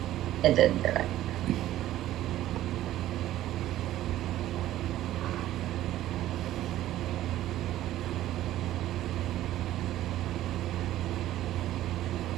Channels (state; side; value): quieter; left; 13.8 dB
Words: It didn't do it.